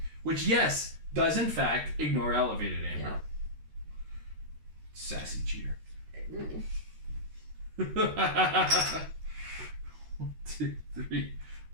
Which, yes, does in fact ignore elevated, Amber. Yeah. Sassy cheater. 1, 2, 3,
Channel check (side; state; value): left; late; 13 ms